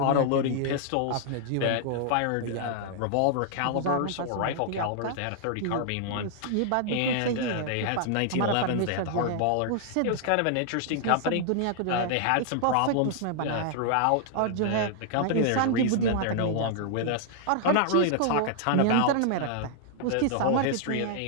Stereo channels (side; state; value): both; different; correlation -0.01